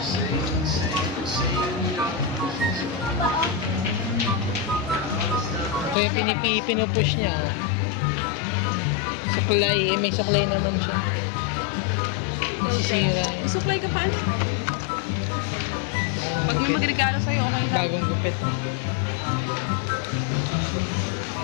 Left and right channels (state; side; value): drops out; right; at 6.0 s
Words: Kaya pinupush niya. Oh. Suklay. May suklay naman siya. Nasisira yan. Supply ka pa? Bagong Pag may gupit. magregalo sa'yo, okay lang. Bagong gupit. Oh.